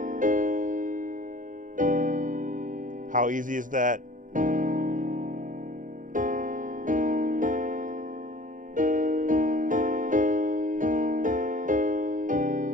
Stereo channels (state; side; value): late; left; 0.38 ms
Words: How easy is that?